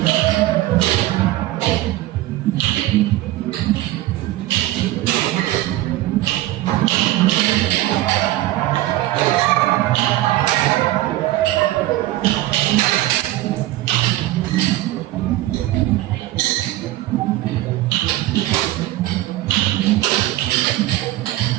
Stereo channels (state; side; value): quieter; left; 16.1 dB